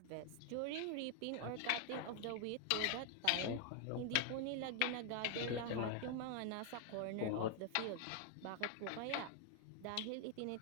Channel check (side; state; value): both; different; correlation 0.00